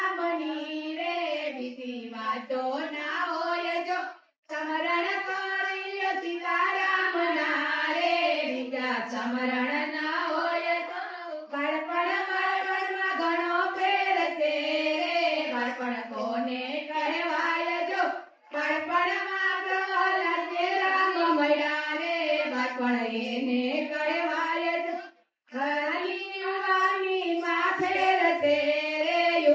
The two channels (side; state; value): both; identical; correlation 1.00